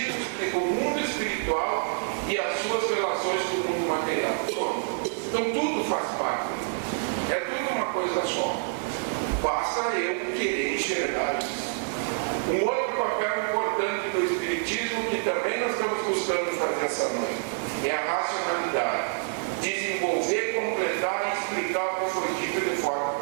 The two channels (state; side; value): silent; left; digital silence